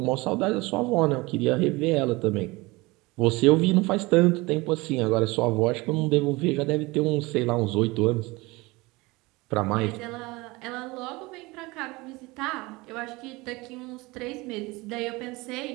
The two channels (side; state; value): left; quieter; 22.9 dB